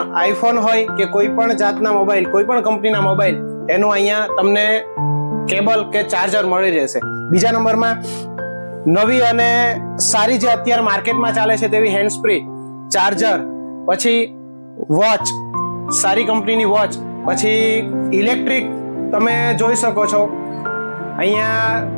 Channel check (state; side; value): inverted; both; correlation -1.00